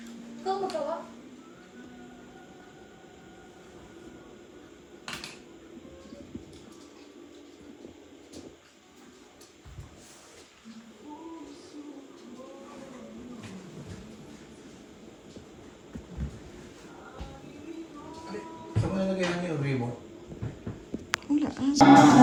magawa? Saan mo nalagay namin yung ribo?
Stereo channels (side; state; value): both; identical; correlation 1.00